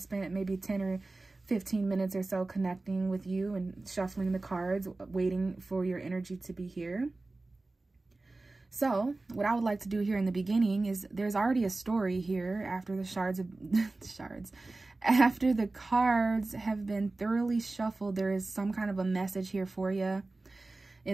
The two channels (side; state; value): left; quieter; 3.2 dB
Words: maybe 10 or 15 minutes or so connecting with you and shuffling the cards, waiting for your energy to be here. So what I would like to do here in the beginning is there's already a story here after the after the cards have been thoroughly shuffled. There is some kind of a message here for you.